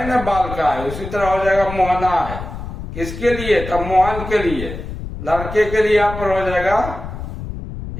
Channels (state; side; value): noise; left; rumble, 9 dB below the sound